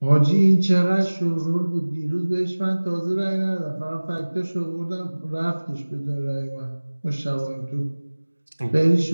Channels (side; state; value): both; inverted; correlation -1.00